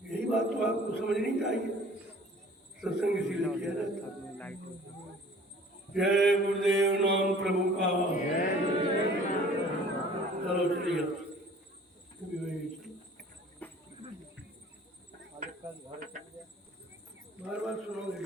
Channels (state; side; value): normal; both; correlation 0.50